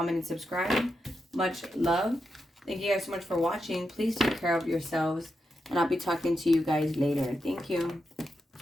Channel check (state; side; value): normal; both; correlation 0.86